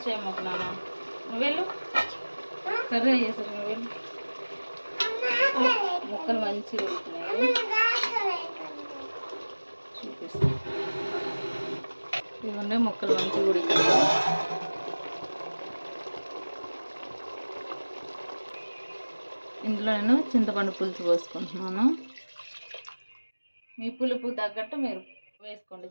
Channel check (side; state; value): both; inverted; correlation -1.00